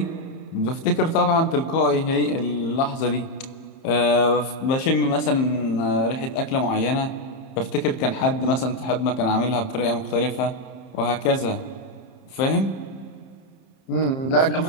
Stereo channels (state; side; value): late; right; 30 ms